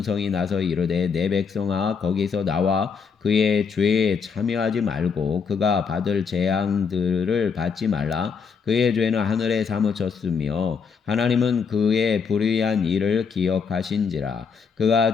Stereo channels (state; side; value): quieter; right; 5.9 dB